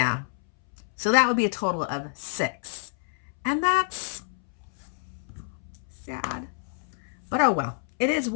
So that would be a total of 6. And that's sad. But oh well. It is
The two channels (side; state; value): right; silent; 60 dB below the other